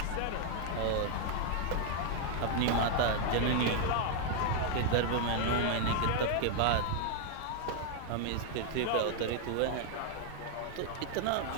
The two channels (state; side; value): different; both; correlation 0.00